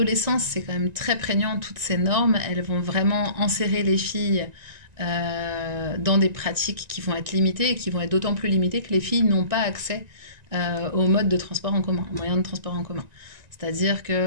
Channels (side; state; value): left; late; 1.9 ms